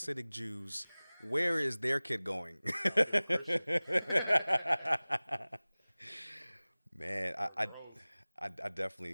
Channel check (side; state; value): both; inverted; correlation -0.99